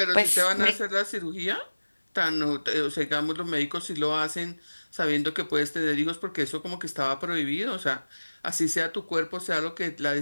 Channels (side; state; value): both; inverted; correlation -1.00